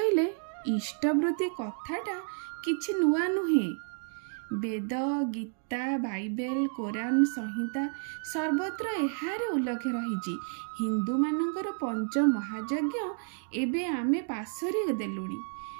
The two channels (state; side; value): silent; left; 56 dB below the other